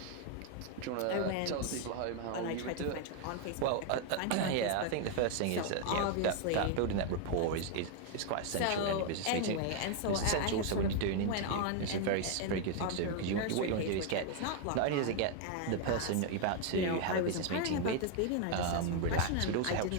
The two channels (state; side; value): different; both; correlation 0.00